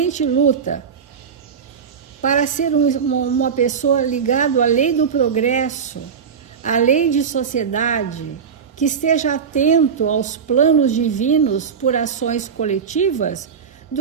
luta para ser uma pessoa ligada à lei do progresso, à lei de sociedade, que esteja atento aos planos divinos por ações coletivas,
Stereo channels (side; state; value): left; quieter; 6.7 dB